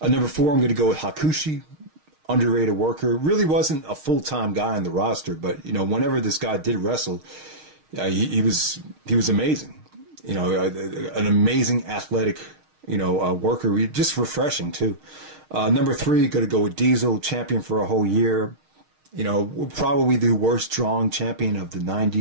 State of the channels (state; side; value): late; left; 6.4 ms